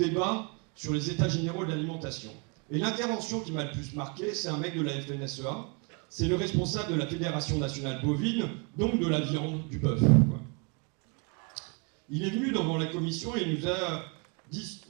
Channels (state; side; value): quieter; left; 33.5 dB